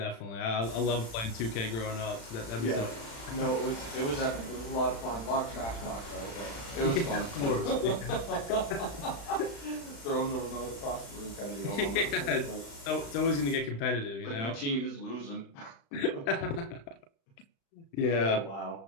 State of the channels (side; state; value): right; late; 35 ms